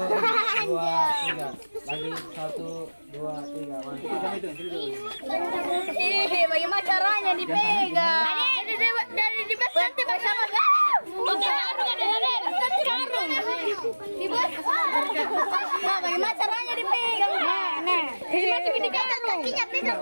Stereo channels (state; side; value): inverted; both; correlation -1.00